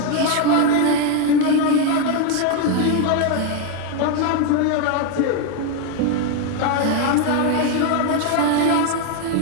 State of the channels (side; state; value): both; different; correlation 0.01